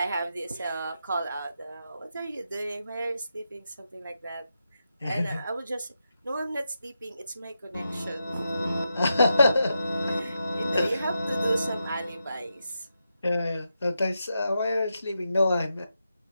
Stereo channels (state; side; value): inverted; both; correlation -0.87